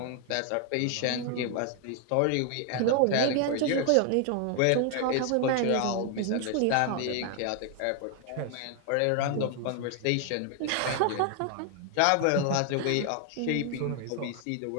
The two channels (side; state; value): both; different; correlation 0.00